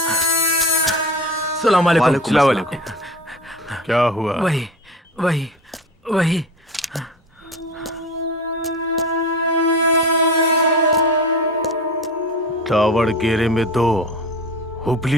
सलाम अलैकुम। सलाम अलैकुम। क्या हुआ? वही दावड़गेरे में 2,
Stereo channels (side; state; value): both; normal; correlation 0.32